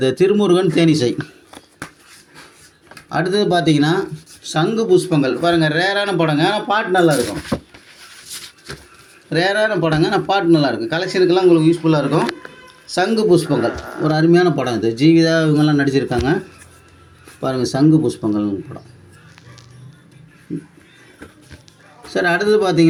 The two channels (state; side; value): identical; both; correlation 1.00